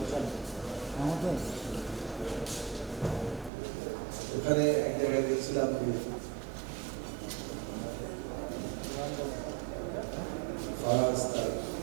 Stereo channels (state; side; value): drops out; left; at 3.5 s